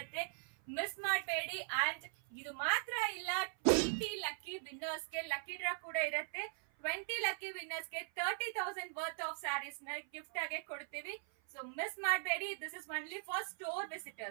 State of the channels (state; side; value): silent; left; 51 dB below the other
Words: ಮಿಸ್ ಮಾಡಬೇಡಿ. ಅಂಡ್ ಇದು ಮಾತ್ರ ಇಲ್ಲ, 20 ಲಕ್ಕಿ ವಿನ್ನರ್ಸ್ಗೆ ಲಕ್ಕಿ ಡ್ರಾ ಕೂಡ ಇರುತ್ತೆ. 20 ಲಕ್ಕಿ ವಿನ್ನರ್ಸ್ಗೆ 30,000 ವರ್ತ್ ಆಫ್ ಸ್ಯಾರೀಸ್ ನ ಗಿಫ್ಟ್ ಆಗಿ ಕೊಡ್ತೀವಿ. ಸೊ ಮಿಸ್ ಮಾಡಬೇಡಿ. This is only for store